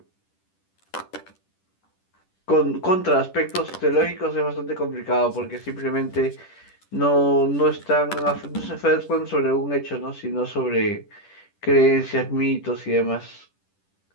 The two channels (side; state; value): right; late; 10 ms